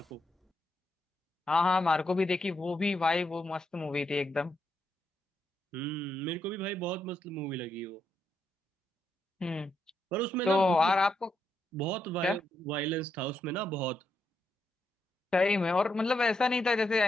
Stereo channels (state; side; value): normal; both; correlation 0.80